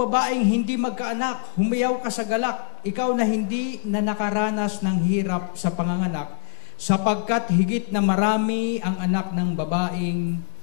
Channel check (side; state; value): right; silent; digital silence